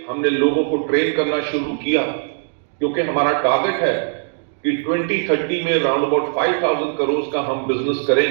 हमने लोगों को ट्रेन करना शुरू किया क्योंकि हमारा टारगेट है कि 2030 में अराउंड अबाउट 5,000 करोड़ का हम बिजनेस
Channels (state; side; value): silent; left; digital silence